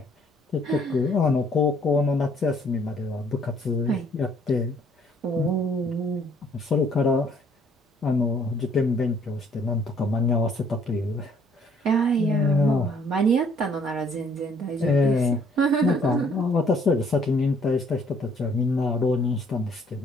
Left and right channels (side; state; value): both; normal; correlation 0.62